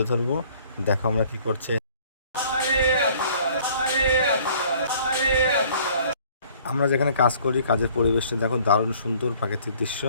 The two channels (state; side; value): inverted; both; correlation -0.56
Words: ধরবো। দেখো আমরা কি করছে। আমরা যেখানে কাজ করি, কাজের পরিবেশটা দেখো, দারুণ সুন্দর প্রাকৃতিক দৃশ্য।